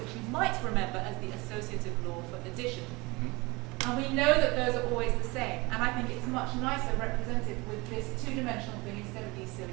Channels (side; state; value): left; quieter; 24.6 dB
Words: you might remember as the associative law for addition. And we know that those are always the same, and I think it's much nicer represented with this 2-dimensional thing instead of these silly